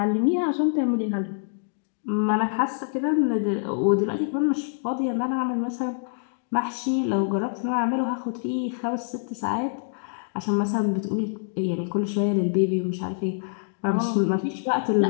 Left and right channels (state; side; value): silent; right; digital silence